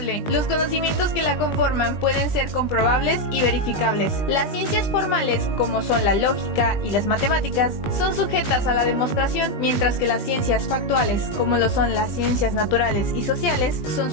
Los conocimientos que la conforman pueden ser comprobables y verificables. Las ciencias formales, como son la lógica y las matemáticas, son sujetas a la demostración, mientras que las ciencias factuales, como lo son las ciencias naturales y sociales, son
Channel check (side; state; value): right; late; 20 ms